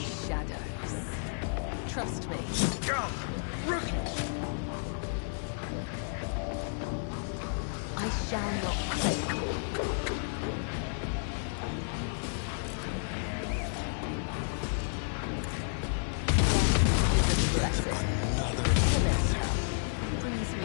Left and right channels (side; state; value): right; silent; digital silence